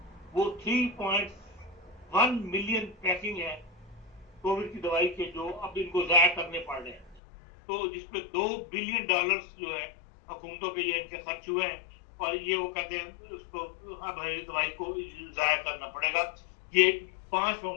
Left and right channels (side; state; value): right; drops out; at 7.2 s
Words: वो 3.1 मिलियन पैकिंग है कोविड की दवाई के, जो अब इनको जाया करने पड़ रहे हैं। तो जिसपे $2 बिलियन जो है हुकूमतों के ये इनके खर्च हुए हैं, और ये वो कहते हैं उसको अब दवाई को जाया करना पड़ेगा। ये 5